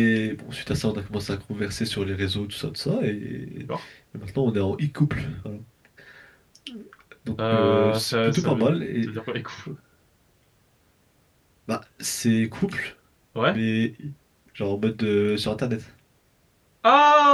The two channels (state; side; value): identical; both; correlation 1.00